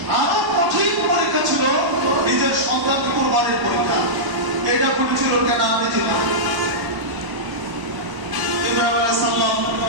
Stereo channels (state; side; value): late; left; 1.0 ms